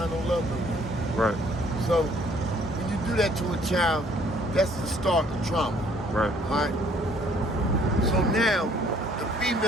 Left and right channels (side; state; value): both; normal; correlation 0.61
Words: no love no more. Right. So when you do that to a child, that's the start of trauma. Right. All right. So now the